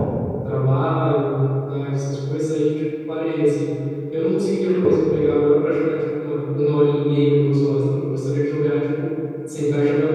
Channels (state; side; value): identical; both; correlation 1.00